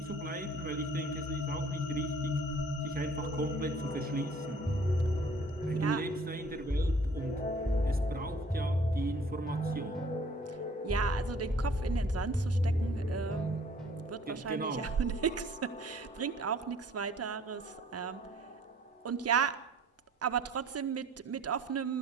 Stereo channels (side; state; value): both; normal; correlation 0.54